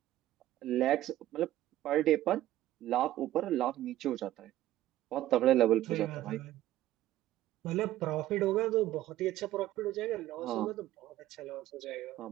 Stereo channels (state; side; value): quieter; left; 14.3 dB